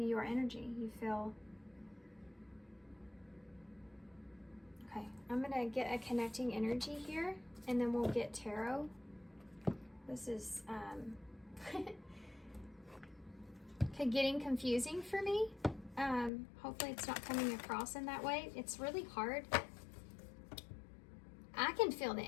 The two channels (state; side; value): drops out; right; at 16.3 s